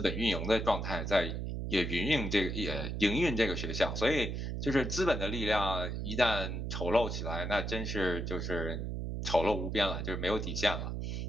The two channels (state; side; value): noise; right; hum, 3 dB below the sound